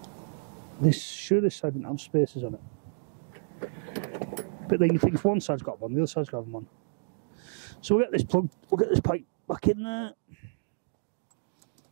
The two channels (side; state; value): left; silent; digital silence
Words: This side didn't have spaces on it. But then you think if one side's got one, the other side's got them on. So we'll get this plug, we'll get this pipe back in there.